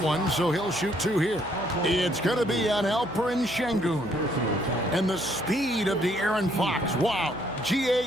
so he'll shoot 2 here. It's going to be on Alperen Şengün. And the speed of De'Aaron Fox. Wow. GA,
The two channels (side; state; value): right; noise; hum, 16 dB below the sound